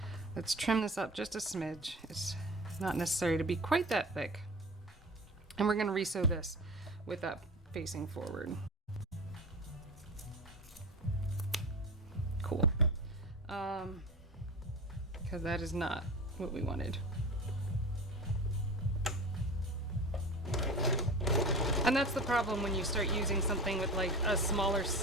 Let's trim this up just a smidge. It's not necessary to be quite that thick. And we're gonna resew this with that facing forward. Cool. Because that is not what we wanted. And that's the problem when you start using something with like a smaller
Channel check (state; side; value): normal; both; correlation 0.31